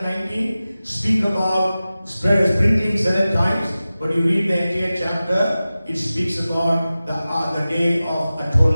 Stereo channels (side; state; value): both; inverted; correlation -0.96